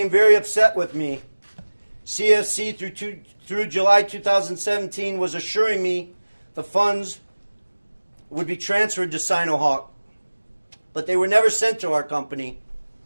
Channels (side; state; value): both; inverted; correlation -1.00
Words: very upset with me. CFC through July 2017 was assuring me the funds would be transferred to Sinohawk, but they were never sent to our company.